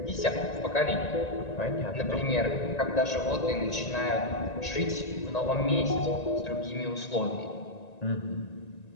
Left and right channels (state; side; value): late; right; 1.9 ms